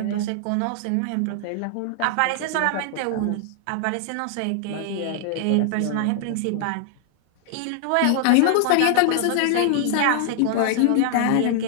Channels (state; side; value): different; both; correlation 0.00